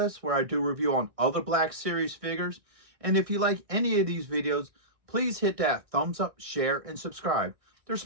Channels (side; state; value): left; late; 1.6 ms